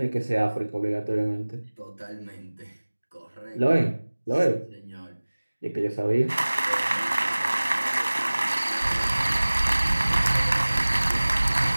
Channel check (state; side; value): inverted; both; correlation -1.00